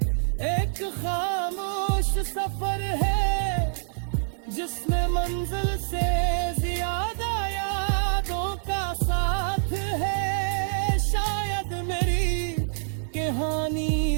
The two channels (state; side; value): silent; left; digital silence